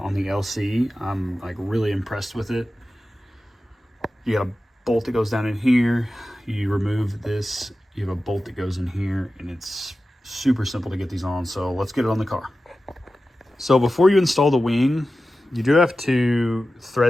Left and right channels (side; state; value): both; normal; correlation 0.94